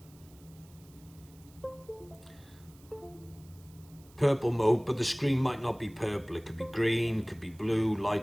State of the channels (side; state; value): right; noise; hiss, 26 dB below the sound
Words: purple mode, but the screen might not be purple. It could be green, could be blue,